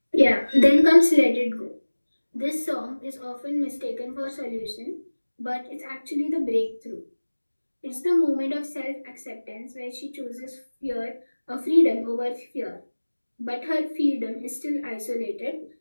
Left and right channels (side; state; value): both; inverted; correlation -1.00